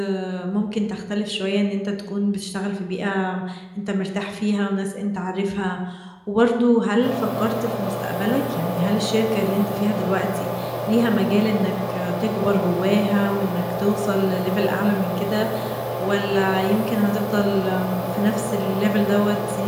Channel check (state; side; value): identical; both; correlation 1.00